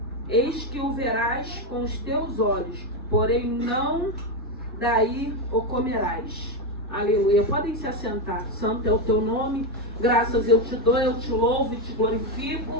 Eis que o verás com os teus olhos, porém não daí o comerás. Aleluia. Podem se assentar. Santo é o teu nome. Graças eu te dou, eu te louvo e te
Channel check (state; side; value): normal; both; correlation 0.09